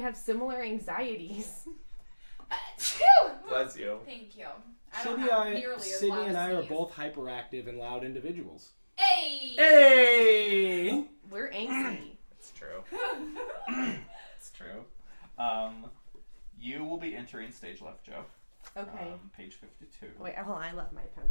similar anxieties. Bless you. Thank you. I don't have nearly as Sydney loud and I as are these. both hyperactive and loud individuals. Hey! Hey! We're angsty. It's true. It's true. You will be entering stage left, Joe. Okay. Page 52. Wait, hold on. I left my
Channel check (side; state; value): both; inverted; correlation -1.00